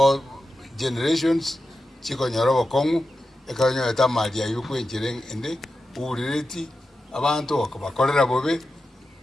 generations chiko nyorobo kongu. Ekanyo eta maria yu kwenjire ende. Urireti. Abantu wakabakolera bobe.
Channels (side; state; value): both; normal; correlation 0.91